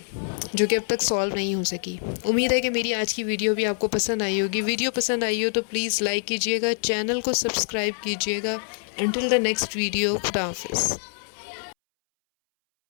جو کہ اب تک سالو نہیں ہو سکی۔ امید ہے کہ میری آج کی ویڈیو بھی آپ کو پسند آئی ہوگی۔ ویڈیو پسند آئی ہو تو پلیز لائک کیجیے گا، چینل کو سبسکرائب کیجیے گا۔ انٹل دا نیکسٹ ویڈیو، خدا حافظ۔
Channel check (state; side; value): silent; right; 62 dB below the other